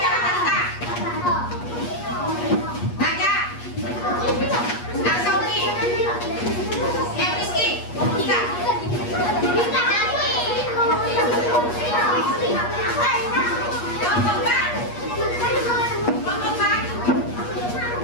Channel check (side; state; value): right; late; 8.4 ms